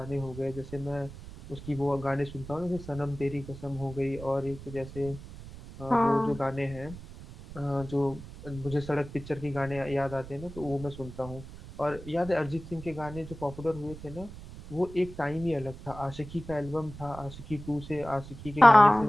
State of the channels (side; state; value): right; noise; rumble, 14 dB below the sound